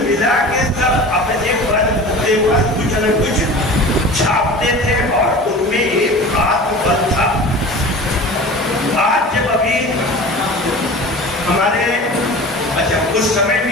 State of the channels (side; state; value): both; normal; correlation 0.37